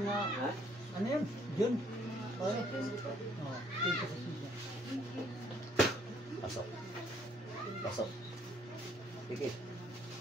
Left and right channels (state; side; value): normal; both; correlation 0.64